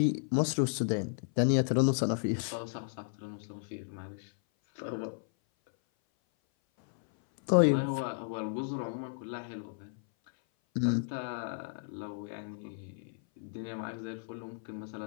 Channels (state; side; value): silent; right; 55 dB below the other